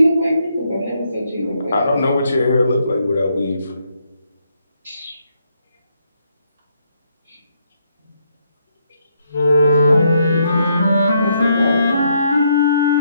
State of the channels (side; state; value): both; inverted; correlation -0.75